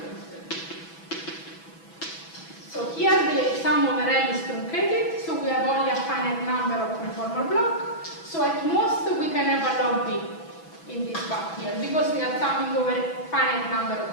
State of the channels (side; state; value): right; late; 6.1 ms